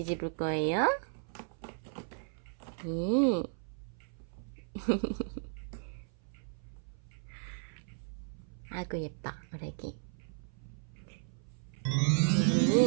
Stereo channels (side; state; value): left; silent; 54 dB below the other